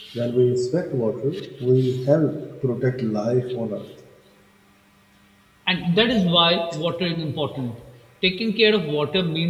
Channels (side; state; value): both; identical; correlation 1.00